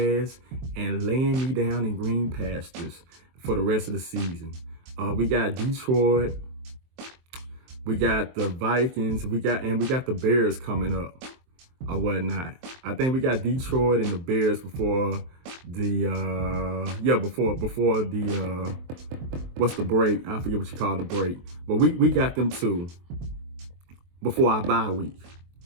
and laying me down in green pastures for the rest of the season. We got Detroit, We got the Vikings. We got the Bears coming up or whatnot. I think we got Detroit and the Bears before the before the what's the break? I forget what you call the break. But we got them two before our bye week.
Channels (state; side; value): late; left; 23 ms